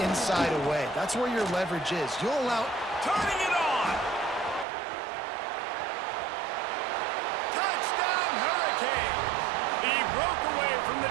inside away. That's where your leverage is. You'll allow... Turning it on! Touchdown, Hurricanes! He broke away from the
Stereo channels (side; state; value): left; drops out; at 4.7 s